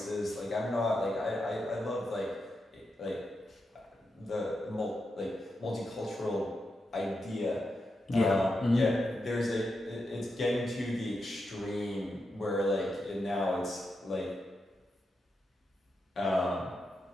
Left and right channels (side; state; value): both; normal; correlation 0.86